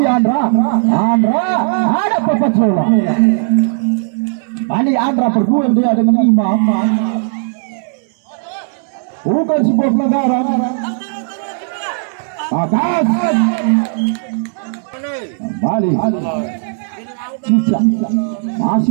Andra ada Papat Zola. Kali Andra berduel dia dengan Imam. Bukan sebuah pelanggaran. Atas kembali Cicak,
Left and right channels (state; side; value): silent; left; digital silence